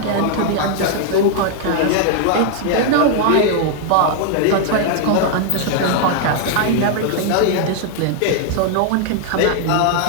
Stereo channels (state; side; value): different; both; correlation 0.00